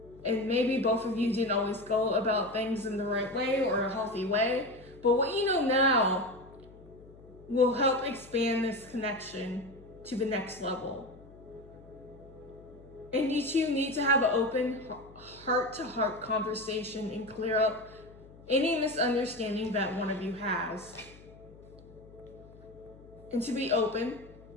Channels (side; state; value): left; noise; hum, 22 dB below the sound